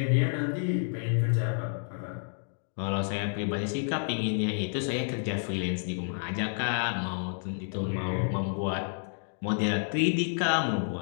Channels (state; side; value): silent; right; digital silence